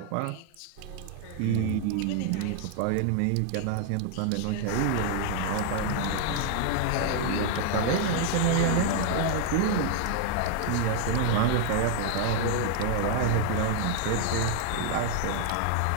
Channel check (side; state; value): both; different; correlation 0.00